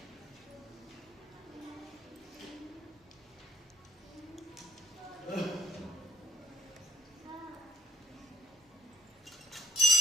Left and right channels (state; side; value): normal; both; correlation 0.60